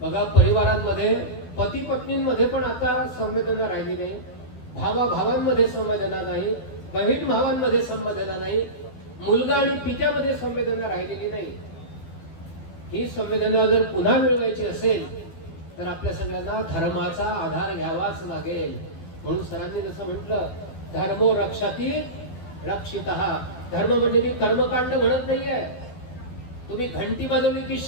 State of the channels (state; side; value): late; right; 12 ms